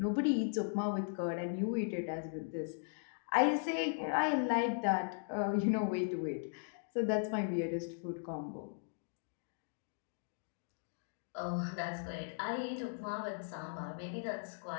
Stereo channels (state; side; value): silent; right; digital silence